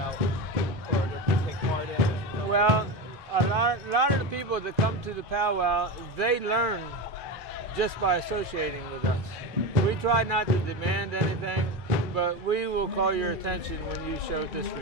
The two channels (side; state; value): both; normal; correlation 0.21